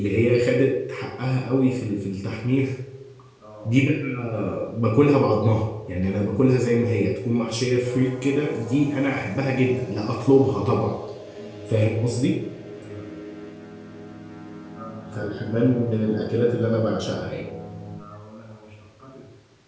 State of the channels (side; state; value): both; identical; correlation 1.00